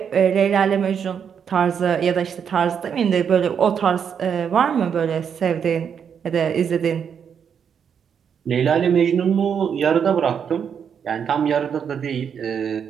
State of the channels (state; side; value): quieter; left; 7.5 dB